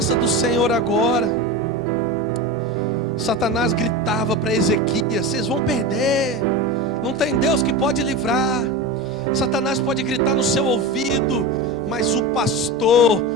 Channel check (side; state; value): right; noise; hum, 22 dB below the sound